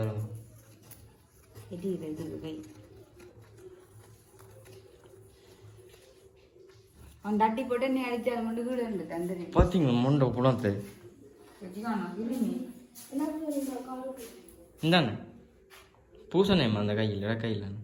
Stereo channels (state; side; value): identical; both; correlation 1.00